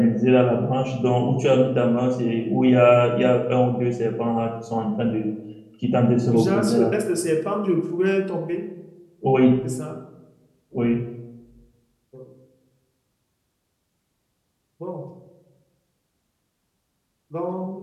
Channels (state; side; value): identical; both; correlation 1.00